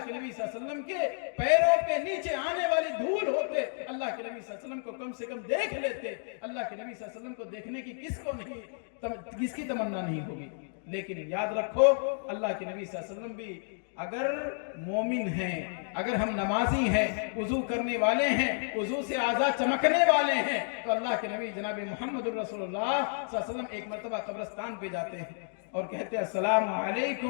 کے نبی صلی اللہ علیہ وسلم کے پیروں کے نیچے آنے والی دھول ہوتے، اللہ کے نبی صلی اللہ علیہ وسلم کو کم سے کم دیکھ لیتے۔ اللہ کے نبی صلی اللہ علیہ وسلم کو دیکھنے کی کس کی تمنا نہیں ہوگی؟ لیکن یاد رکھو، اللہ کے نبی صلی اللہ علیہ وسلم بھی اگر مومن ہیں، اگر ہم نمازی ہیں، وضو کرنے والے ہیں، وضو سے اعضاء چمکنے والے ہیں، تو اللہ کے نبی جناب محمد رسول اللہ صلی اللہ علیہ وسلم ایک مرتبہ قبرستان پہ جاتے ہیں اور کہتے ہیں السلام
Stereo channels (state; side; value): silent; right; digital silence